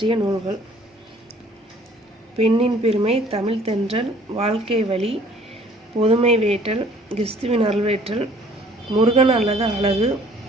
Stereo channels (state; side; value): normal; both; correlation 0.55